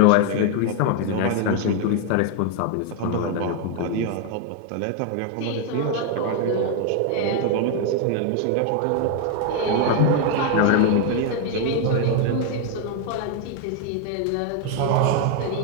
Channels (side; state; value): both; different; correlation 0.01